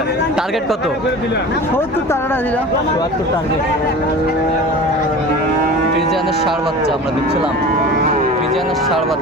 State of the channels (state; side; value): normal; both; correlation 0.36